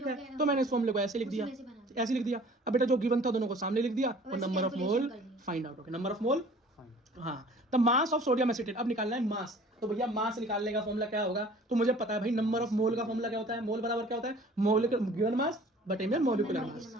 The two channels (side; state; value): both; normal; correlation 0.49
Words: है, तो मैंने इस फॉर्मूले को ऐसे लिख दिया, ऐसे लिख दिया। अब बेटा जो गिवन था दोनों को सामने लिख दिया, और number of mole find out हो गया। नंबर ऑफ मोल, हाँ। The mass of sodium acetate. अब निकालना है मास। तो भैया मास निकालने का फॉर्मूला क्या होगा? तो मुझे पता है भाई नंबर ऑफ मोल का फॉर्मूला क्या होता है? मोल बराबर क्या होता है? मोलिकुलर गिवन मास बटे में मोलिकुलर मास,